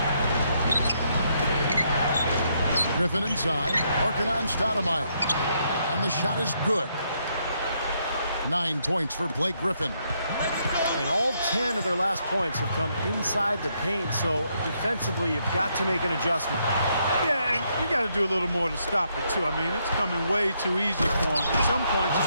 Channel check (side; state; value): both; inverted; correlation -0.75